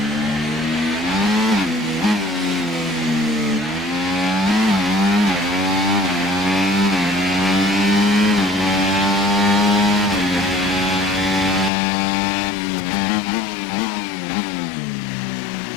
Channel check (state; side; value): drops out; right; at 11.7 s